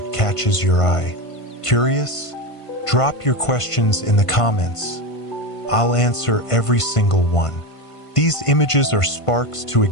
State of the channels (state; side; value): late; right; 1.5 ms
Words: catches your eye. Curious? Drop your questions in the comments. I'll answer every single one. These images are sparks to